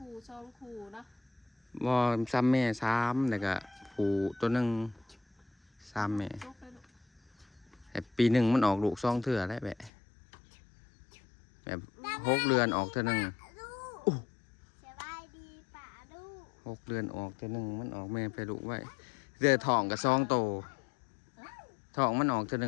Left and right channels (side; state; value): right; drops out; at 9.9 s